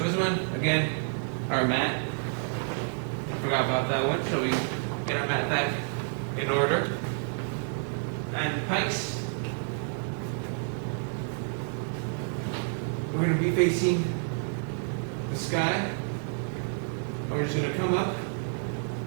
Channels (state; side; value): silent; left; 58 dB below the other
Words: this one, again, our mat. Forgot about that one. So we get our mat back in order. And pikes, we're going to be facing the sky. We're just going to come up